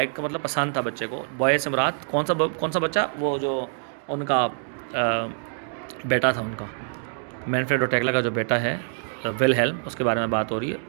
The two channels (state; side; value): silent; left; digital silence